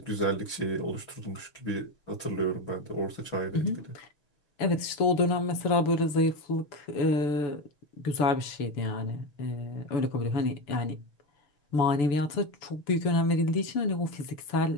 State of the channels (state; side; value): late; right; 6.9 ms